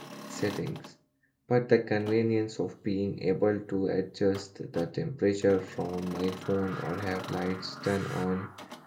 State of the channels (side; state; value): both; identical; correlation 1.00